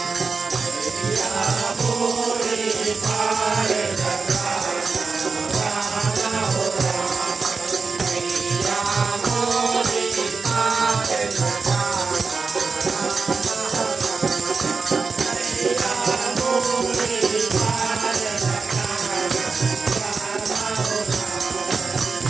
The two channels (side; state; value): left; quieter; 4.7 dB